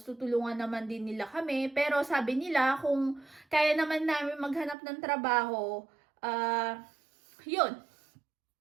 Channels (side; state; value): left; drops out; at 4.8 s